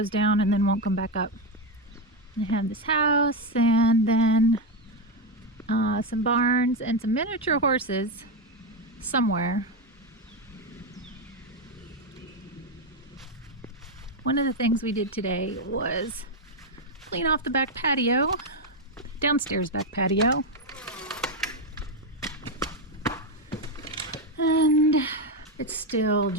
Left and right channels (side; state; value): both; normal; correlation 0.08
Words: down and then won't come back up. I have this house and then some barns and some miniature horses somewhere. One of the things we did today was clean off the back patio, downstairs back patio. And it's still